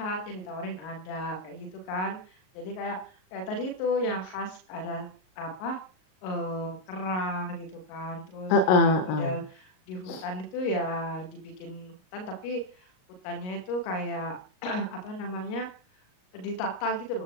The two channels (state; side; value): late; right; 38 ms